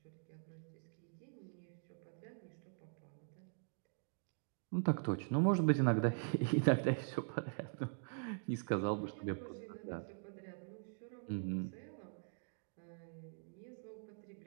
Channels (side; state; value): left; silent; digital silence